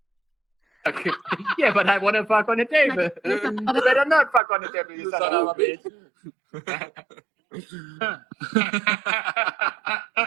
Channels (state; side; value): drops out; left; at 4.4 s